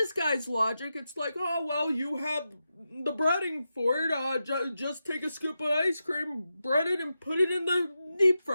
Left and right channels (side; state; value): both; inverted; correlation -0.89